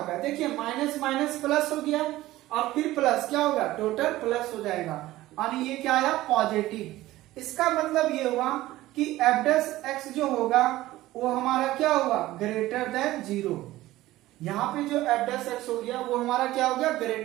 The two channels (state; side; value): quieter; left; 16.5 dB